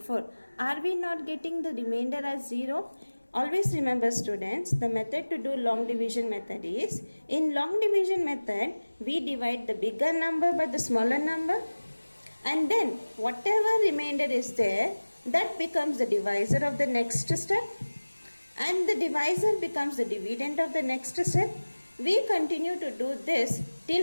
Are we not getting the remainder as 0? Always remember students, the method to do long division method is, in long division method we divide the bigger number by the smaller number, and then whatever remainder is there, that becomes the divisor of the next step, and the divisor becomes the dividend of the next step. We continue to do this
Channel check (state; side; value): inverted; both; correlation -1.00